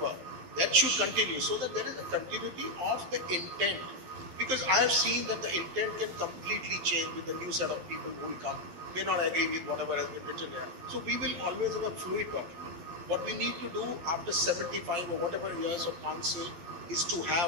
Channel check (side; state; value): left; late; 12 ms